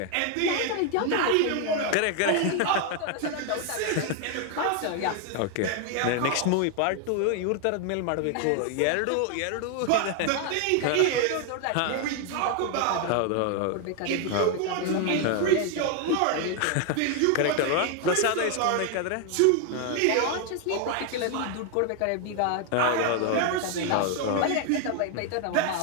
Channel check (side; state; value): both; different; correlation 0.01